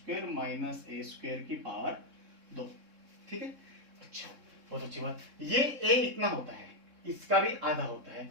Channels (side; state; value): left; late; 3.6 ms